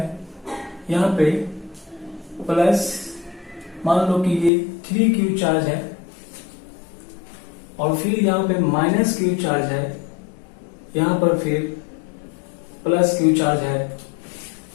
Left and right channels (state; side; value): drops out; right; at 4.5 s